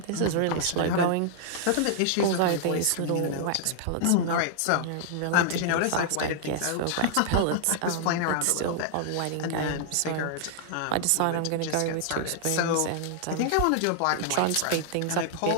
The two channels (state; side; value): different; both; correlation -0.01